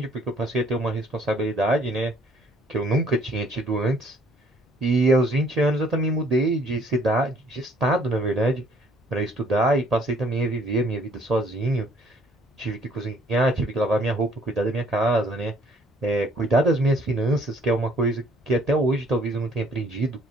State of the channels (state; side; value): normal; both; correlation 0.61